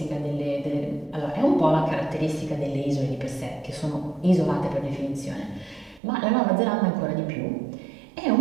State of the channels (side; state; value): left; drops out; at 6.0 s